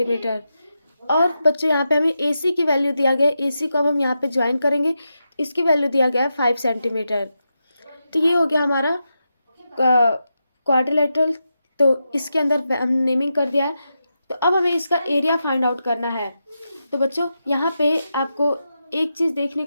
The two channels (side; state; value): both; inverted; correlation -0.88